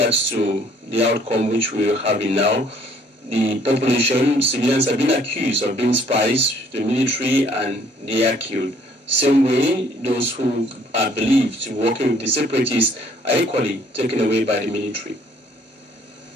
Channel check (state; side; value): normal; both; correlation 0.61